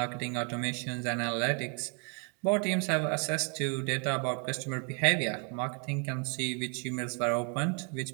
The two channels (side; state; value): left; quieter; 37.7 dB